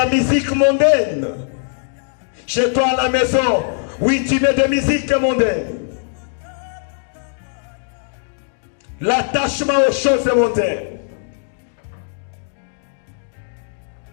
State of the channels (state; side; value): silent; right; digital silence